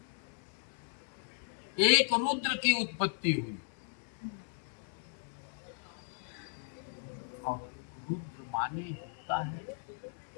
एक रुद्र की उत्पत्ति हुई। और रुद्र माने होता है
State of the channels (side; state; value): right; silent; digital silence